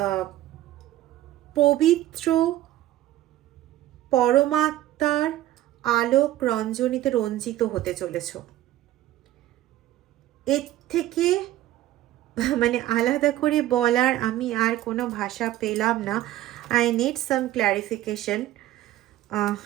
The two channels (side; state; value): left; quieter; 14.3 dB